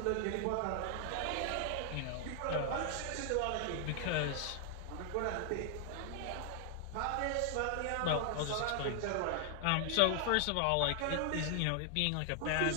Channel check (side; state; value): both; different; correlation 0.00